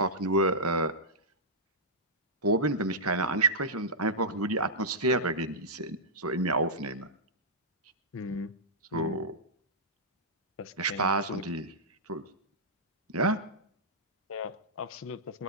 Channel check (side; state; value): both; normal; correlation -0.13